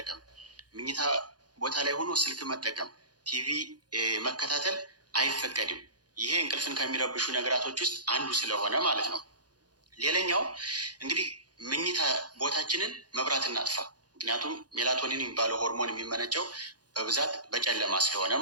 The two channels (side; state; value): left; late; 0.69 ms